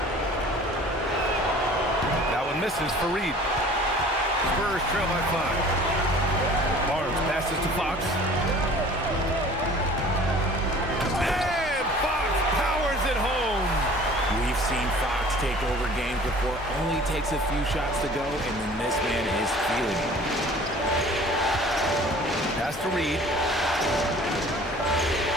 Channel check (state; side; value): normal; both; correlation 0.47